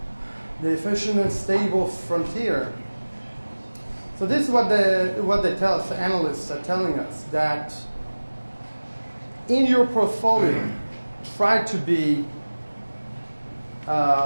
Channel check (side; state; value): both; inverted; correlation -1.00